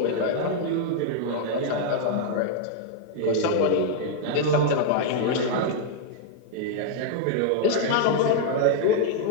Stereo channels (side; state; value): both; different; correlation -0.01